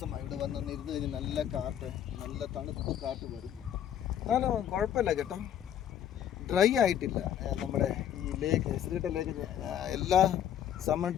ഇവിടെ വന്നൊന്ന് ഇരുന്ന് കഴിഞ്ഞ്. നല്ല കാറ്റ്, നല്ല തണുപ്പ് കാറ്റ് വരും. എന്നാലും കുഴപ്പമില്ല കേട്ടോ, ഡ്രൈ ആയിട്ടില്ല. നമ്മുടെ ഈ ലേക്ക് ശ്രീകണ്ഠ ലേക്ക് എല്ലാ സമ്മർ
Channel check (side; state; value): right; quieter; 10.1 dB